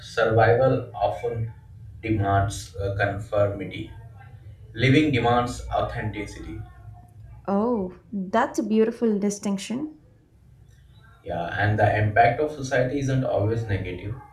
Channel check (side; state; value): both; identical; correlation 1.00